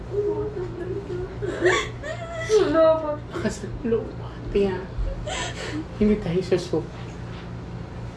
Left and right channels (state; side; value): identical; both; correlation 1.00